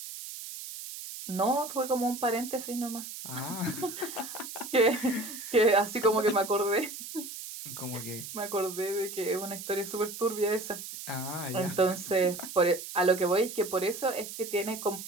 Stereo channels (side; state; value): right; noise; hiss, 10 dB below the sound